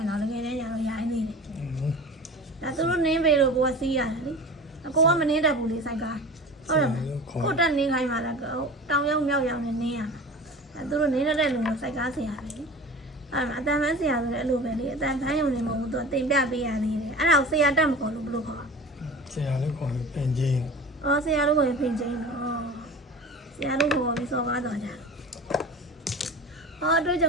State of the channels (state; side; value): normal; both; correlation 0.37